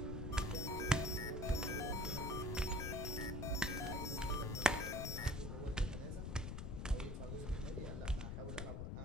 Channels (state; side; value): noise; left; rumble, 4 dB below the sound